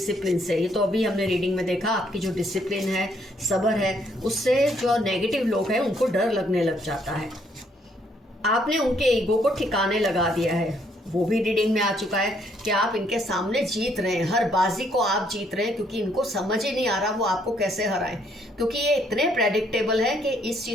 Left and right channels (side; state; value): both; normal; correlation 0.69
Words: से। ये तो अभी हमने रीडिंग में देखा, आपकी जो डिसिप्लिन है, सब्र है, उससे जो नेगेटिव लोग हैं उनको डर लगने लग जाता है। आपने उनके ईगो को ठिकाने लगा दिया है, वो भी रीडिंग में आ चुका है कि आप इनके सामने जीत रहे हैं, हर बाजी को आप जीत रहे हैं, क्योंकि इनको समझ ही नहीं आ रहा वो आपको कैसे हराएं, क्योंकि ये इतने प्रेडिक्टेबल है कि इस